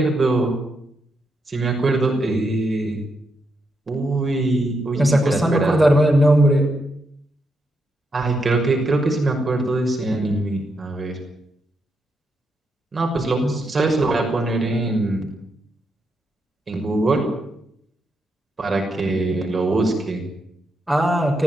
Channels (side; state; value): both; normal; correlation 0.81